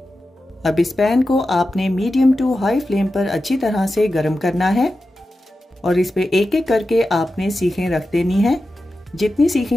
अब इस पैन को आपने मीडियम टू हाई फ्लेम पर अच्छी तरह से गर्म करना है और इस पे एक एक करके आपने सीखें रख देनी है। जितनी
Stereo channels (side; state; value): both; normal; correlation 0.92